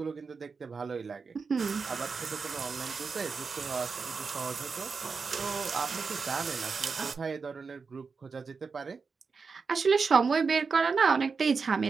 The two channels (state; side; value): quieter; left; 5.0 dB